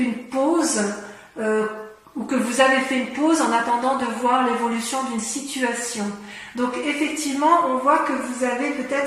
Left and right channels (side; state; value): both; identical; correlation 1.00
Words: pause, ou que vous avez fait une pause en attendant de voir l'évolution d'une situation. Donc effectivement, on voit que vous avez